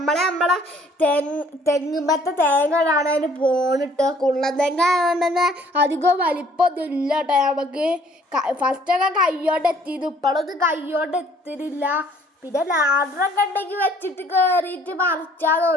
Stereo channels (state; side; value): normal; both; correlation 0.59